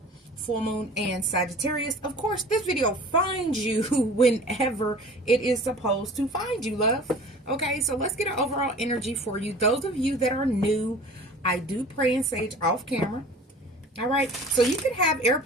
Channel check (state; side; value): normal; both; correlation 0.44